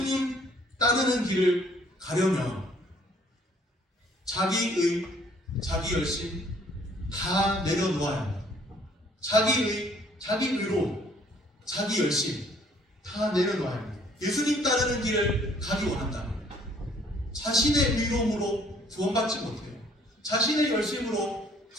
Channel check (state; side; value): normal; both; correlation 0.61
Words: 따르는 길을 가려면 자기 의, 자기 열심 다 내려놓아야 합니다. 자기 의로, 자기 열심 다 내려놓아야 합니다. 예수님 따르는 길을 가기 원한다면 자신의 의로움으로 구원받지 못해요. 자신의 열심으로